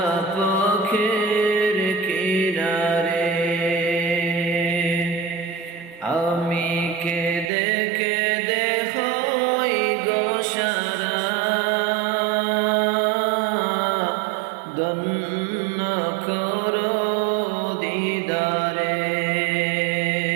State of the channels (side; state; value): left; drops out; at 7.5 s